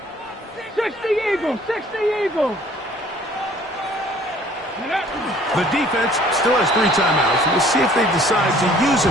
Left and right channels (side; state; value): both; normal; correlation 0.55